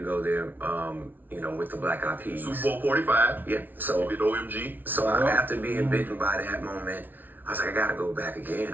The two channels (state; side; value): late; left; 0.086 ms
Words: go there, you know, with the Black Eyed Peas. Super Bowl 45. Yeah. So With OMG. so after being bitten by that moment, I was like, I gotta go back again.